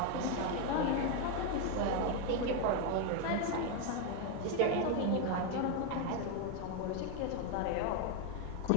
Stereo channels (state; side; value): different; both; correlation 0.01